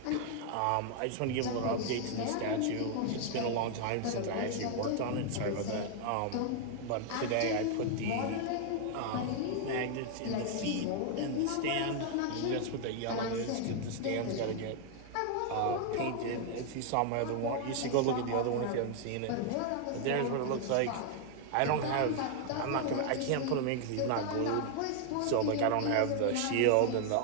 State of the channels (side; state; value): both; different; correlation 0.00